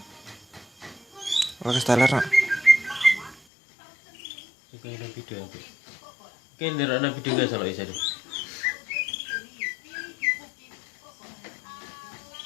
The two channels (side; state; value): right; drops out; at 3.4 s